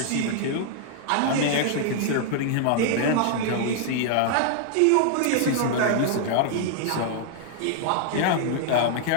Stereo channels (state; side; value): different; both; correlation -0.01